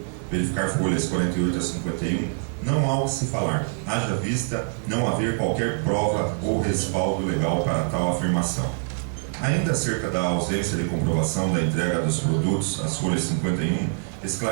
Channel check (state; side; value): silent; left; digital silence